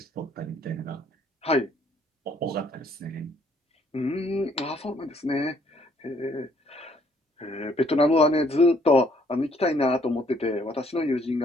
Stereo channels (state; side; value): normal; both; correlation 0.64